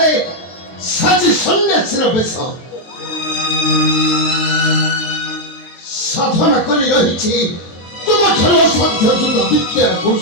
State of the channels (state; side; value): late; right; 23 ms